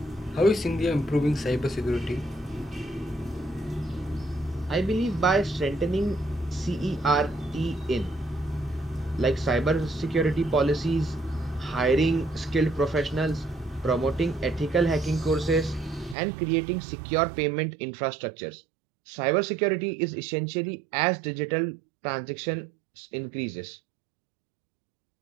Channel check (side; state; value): left; drops out; at 16.2 s